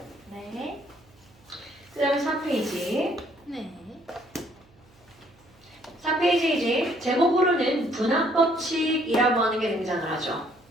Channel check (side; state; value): right; noise; hum, 29 dB below the sound